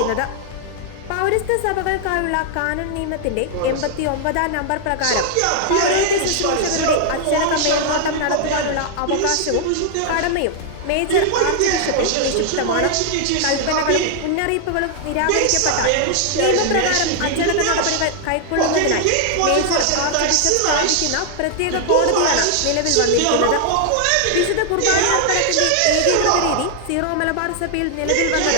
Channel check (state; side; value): different; both; correlation 0.00